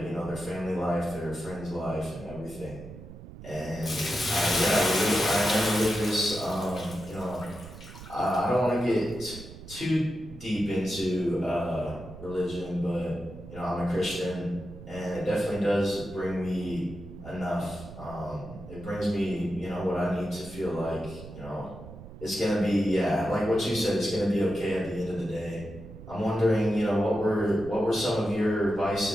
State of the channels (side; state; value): right; noise; rumble, 14 dB below the sound